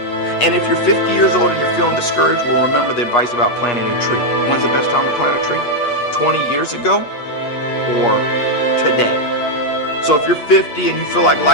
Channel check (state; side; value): late; right; 8.4 ms